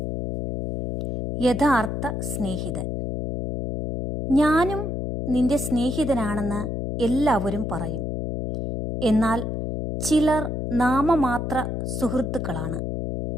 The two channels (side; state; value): left; noise; hum, 3 dB below the sound